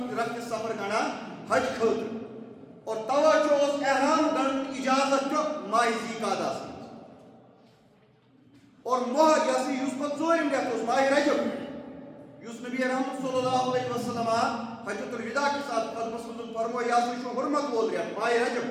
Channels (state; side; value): identical; both; correlation 1.00